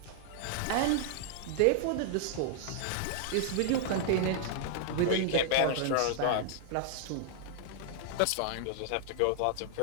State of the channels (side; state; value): both; different; correlation -0.01